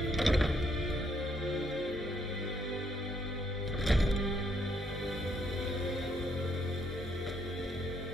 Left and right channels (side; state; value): both; normal; correlation 0.72